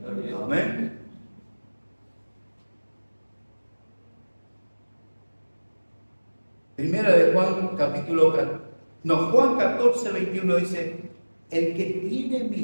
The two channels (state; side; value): inverted; both; correlation -1.00